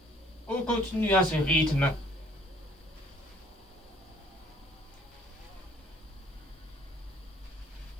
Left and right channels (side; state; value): both; normal; correlation 0.59